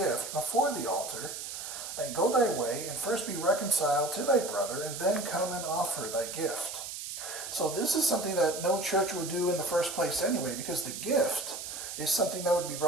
before the altar, and go thy way, and first be reconciled to thy brother, and then come and offer thy gift." So this is something that no church would do in the first place anyway, because the gift is something that would be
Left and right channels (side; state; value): right; noise; hiss, 8 dB below the sound